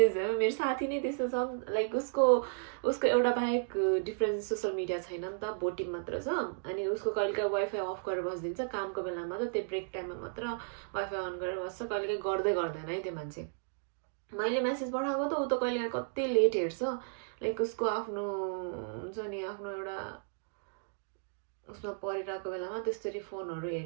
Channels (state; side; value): silent; left; digital silence